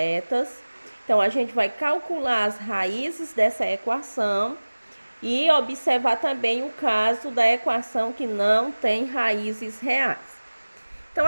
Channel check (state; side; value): inverted; both; correlation -1.00